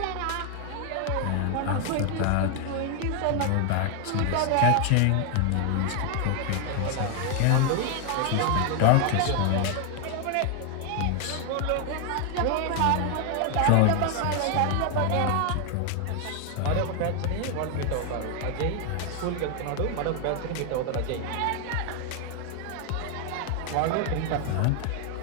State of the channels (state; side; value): different; both; correlation 0.00